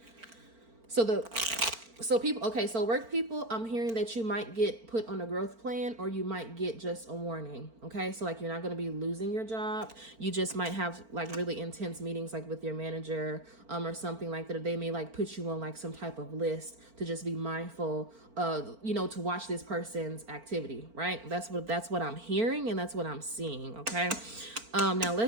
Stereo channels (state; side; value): late; left; 4.4 ms